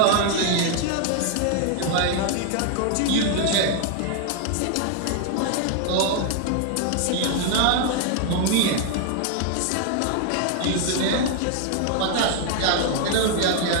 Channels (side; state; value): both; different; correlation 0.00